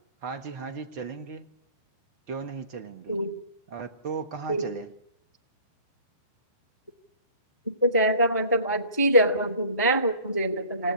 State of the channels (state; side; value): inverted; both; correlation -0.48